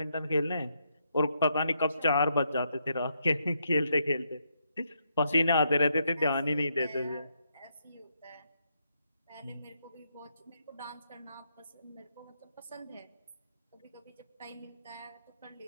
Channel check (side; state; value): both; inverted; correlation -0.78